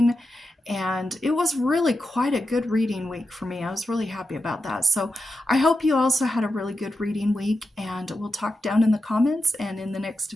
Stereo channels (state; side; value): normal; both; correlation 0.89